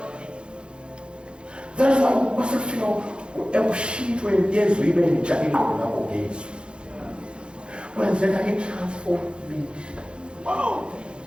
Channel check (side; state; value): left; late; 0.055 ms